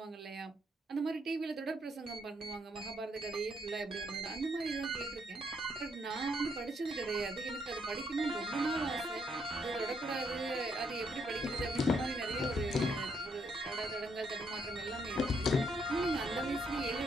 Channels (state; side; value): normal; both; correlation 0.73